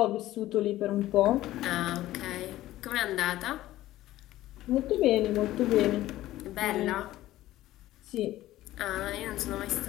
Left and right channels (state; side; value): quieter; right; 15.2 dB